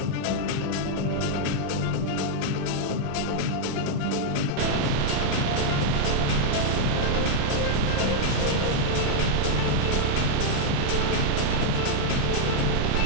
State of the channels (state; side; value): different; both; correlation -0.01